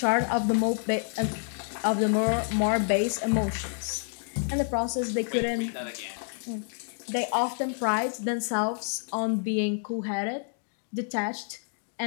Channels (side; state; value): right; silent; digital silence